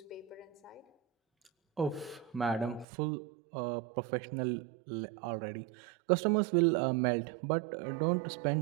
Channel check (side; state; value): left; drops out; at 2.9 s